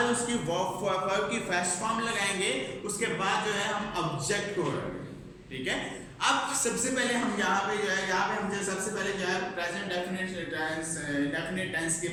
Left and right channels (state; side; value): identical; both; correlation 1.00